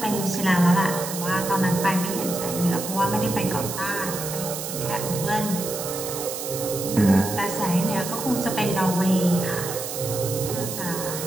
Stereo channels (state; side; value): noise; right; hiss, 7 dB below the sound